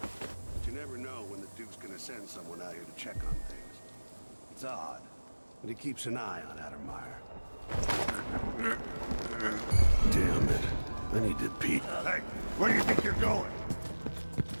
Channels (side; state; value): both; inverted; correlation -1.00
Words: But you never know when the Duke's gonna send someone out here to check on things. It's odd, but he keeps an eye on Addermeyer. Damn it. I need to pee. Hey, where do you think you're going?